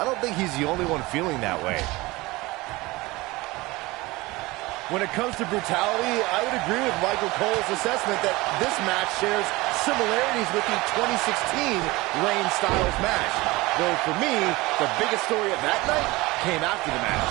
don't think he's the only one feeling that way. When it comes to brutality, I would agree with Michael Cole's assessment that this match shares similarities with the 2016 Reigns-Styles match. Though for me, the biggest story of that night came after the match.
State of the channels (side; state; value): left; quieter; 21.4 dB